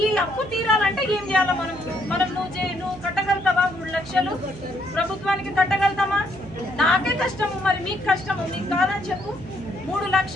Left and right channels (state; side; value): noise; right; hum, 16 dB below the sound